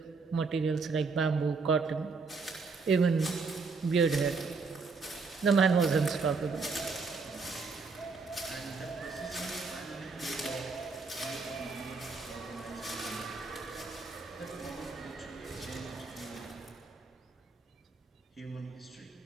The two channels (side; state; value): left; quieter; 4.5 dB